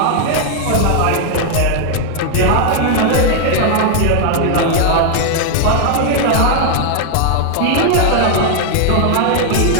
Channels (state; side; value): different; both; correlation 0.00